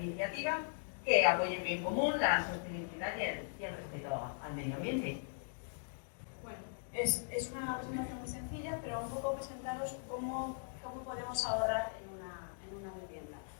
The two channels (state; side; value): silent; right; digital silence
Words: que apoye el bien común, la sostenibilidad y el respeto al medio ambiente. Bueno, es una presentación muy sencilla, pero un poco presentaros cómo podemos ahorrar en una vivienda,